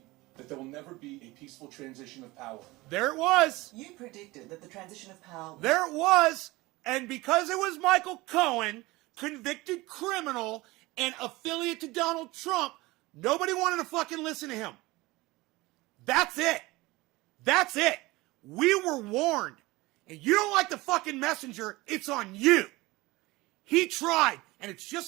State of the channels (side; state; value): left; quieter; 21.0 dB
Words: that there will never be a peaceful transition of power. There it was. You predicted that the transition of power... There it was. And because it was Michael Cohen, convicted criminal, and affiliate to Donald Trump, nobody wanted to fucking listen to him. That's it. That's it. We were warned. And you don't like the fucking messenger, it's on you. He tried, and it's